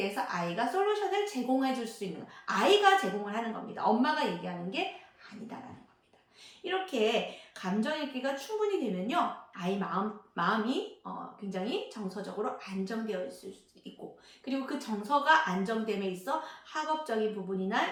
아이가 솔루션을 제공해 줄 수 있는, 아이가 제공을 하는 겁니다. 엄마가 얘기하는 게 아니다라는 겁니다. 이렇게 감정 읽기가 충분히 되면요, 아이 마음이 굉장히 정서적으로 안정되어 있을 수 있고, 그리고 그 정서가 안정됨에 있어 학업적인 부분이나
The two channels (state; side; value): identical; both; correlation 1.00